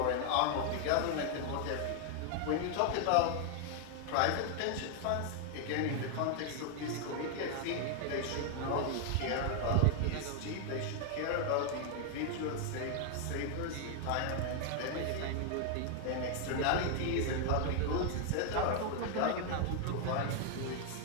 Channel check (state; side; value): different; both; correlation 0.00